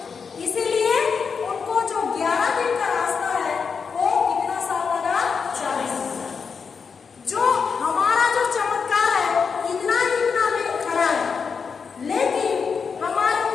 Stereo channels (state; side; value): quieter; right; 5.8 dB